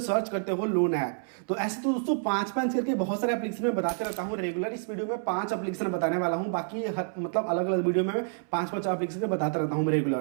करते हो लोन ऐप। तो ऐसे तो दोस्तों 5 करके बहुत सारे एप्लीकेशन में बताते रहता हूँ रेगुलर। इस वीडियो में 5 एप्लीकेशन बताने वाला हूँ, बाकी मतलब अलग अलग वीडियो में 5 एप्लीकेशन बताता रहता हूँ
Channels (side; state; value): left; silent; 59 dB below the other